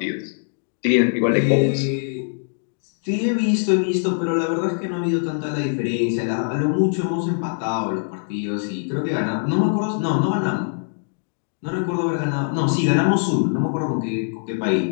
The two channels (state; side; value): silent; right; digital silence